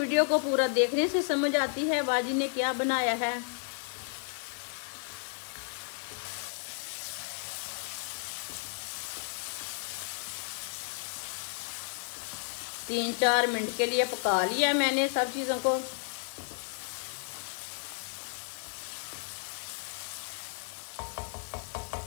को पूरा देखने से समझ आती है बाजी ने क्या बनाया है। तीन 4 मिनट के लिए पका लिया मैंने सब चीजों को।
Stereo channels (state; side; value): silent; right; 56 dB below the other